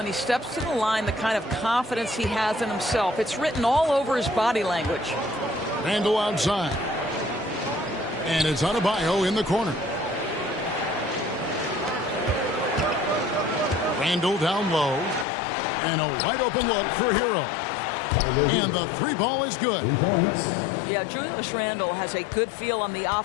he steps to the line the kind of confidence he has in himself. It's written all over his body language. Randall outside. And it's Adebayo in the corner. Randle down low. And a wide open look for Hero. And the three ball is good. 3 points. Yeah, Julius Randle has a good feel on the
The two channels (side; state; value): right; drops out; at 15.2 s